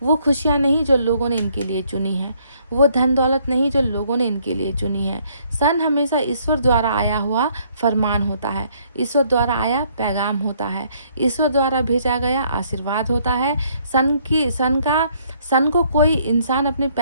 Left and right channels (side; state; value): both; inverted; correlation -0.66